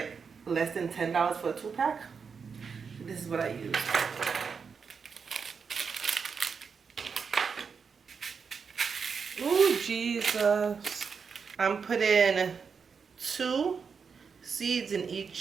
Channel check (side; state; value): left; quieter; 5.8 dB